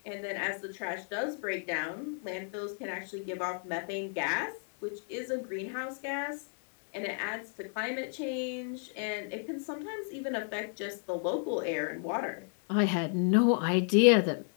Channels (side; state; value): right; silent; 56 dB below the other